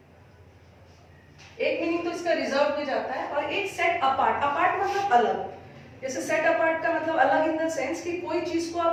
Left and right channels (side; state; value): both; identical; correlation 1.00